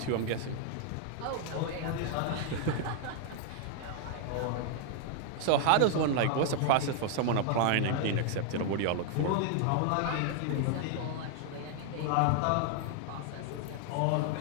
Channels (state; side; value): different; both; correlation 0.00